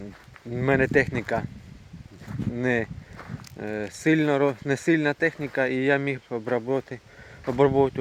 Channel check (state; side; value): identical; both; correlation 1.00